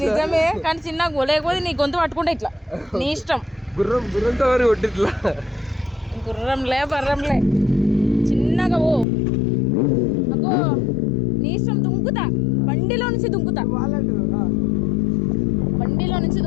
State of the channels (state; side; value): drops out; right; at 9.1 s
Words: నిజమే, కానీ చిన్న లేకపోతే నీ గొంతు పట్టుకుంటే ఇట్లా నీ ఇష్టం. గుర్రంతో వారి ఒడ్డిట్లా గుర్రంలే బర్రంలే చిన్నగా ఓ. అగో నీ ఇష్టం, దుంకుతా బండిలో నుంచి దుంకుతా, బండిలో నుంచి